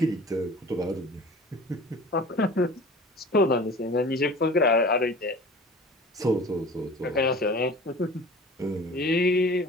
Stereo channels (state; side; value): normal; both; correlation 0.41